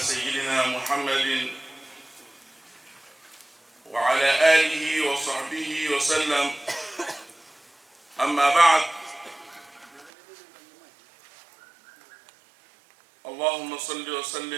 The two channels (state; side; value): drops out; left; at 10.1 s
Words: سيدنا محمد وعلى آله وصحبه وسلم. أما بعد، اللهم صل